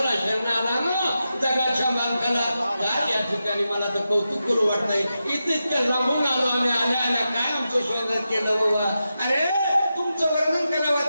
शरणाला ना जगाच्या मालकाला. या ठिकाणी मला तर कौतुक करू वाटतंय. इतकं लांबून आलो आम्ही आल्या आल्या काय आमचं स्वागत केलं बाबा. अरे तुमचं वर्णन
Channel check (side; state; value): both; inverted; correlation -0.89